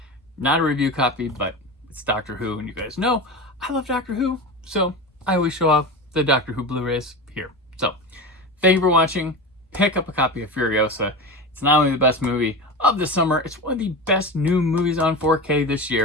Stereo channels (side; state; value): both; normal; correlation 0.26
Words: Not a review copy, but it's Doctor Who, and you guys know I love Doctor Who, so I always show off the Doctor Who Blu-rays here. So thank you for watching. Pick up a copy of Furiosa. It's not only the best movie of the summer, it's one of the best new movies on 4K this